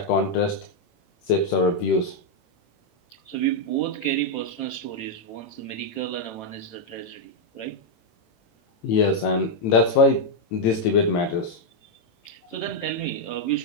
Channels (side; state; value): right; late; 18 ms